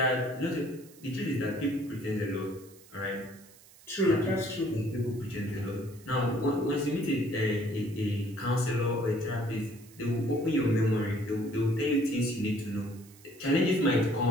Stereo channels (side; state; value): right; noise; hiss, 24 dB below the sound